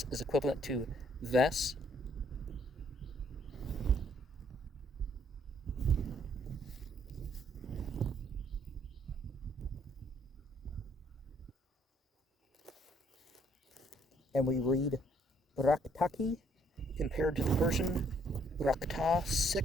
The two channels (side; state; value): both; normal; correlation 0.66